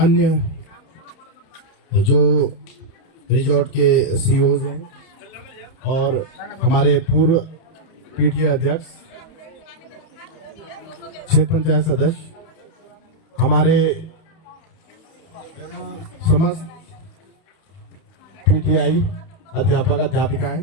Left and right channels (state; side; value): late; right; 30 ms